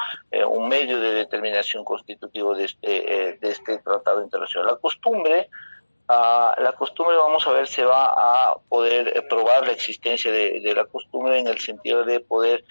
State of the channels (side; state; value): both; inverted; correlation -1.00